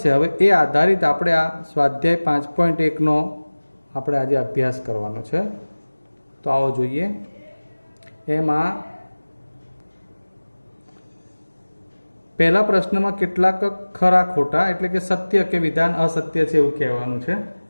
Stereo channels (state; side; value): inverted; both; correlation -1.00